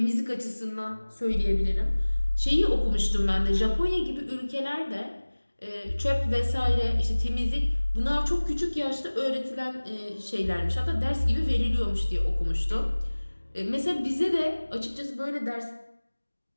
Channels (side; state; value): both; inverted; correlation -1.00